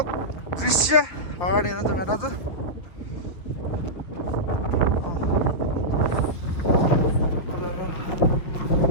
दृश्य अगाडि हेर्नु त भेना त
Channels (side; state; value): right; late; 5.9 ms